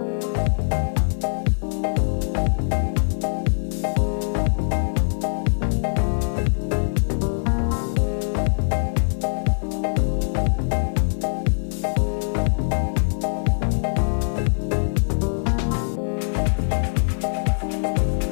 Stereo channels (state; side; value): silent; right; digital silence